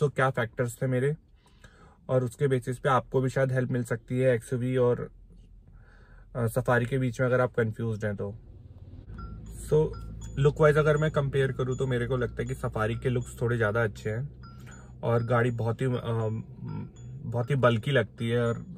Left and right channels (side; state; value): both; identical; correlation 1.00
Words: फैक्टर्स थे मेरे, और उसके बेसिस पे आपको भी शायद हेल्प मिल सकती है XUV और सफारी के बीच में अगर आप कंफ्यूज हैं तो। लुक वाइज अगर मैं कंपेयर करूँ तो मेरे को लगता है कि सफारी के लुक्स थोड़े ज़्यादा अच्छे हैं और गाड़ी बहुत ही बल्की लगती है और